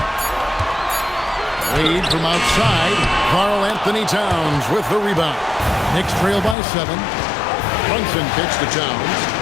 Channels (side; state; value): right; drops out; at 6.6 s